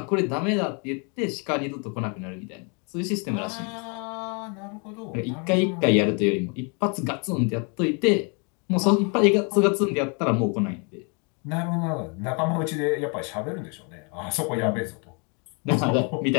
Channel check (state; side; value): quieter; right; 35.5 dB